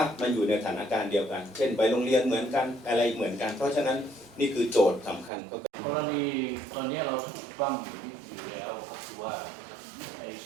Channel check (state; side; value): drops out; left; at 5.3 s